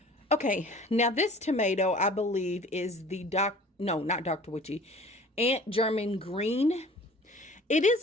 Okay, now this tomato, I believe, is the not Dr. Witchy, Aunt German Green. It is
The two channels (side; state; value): both; normal; correlation 0.46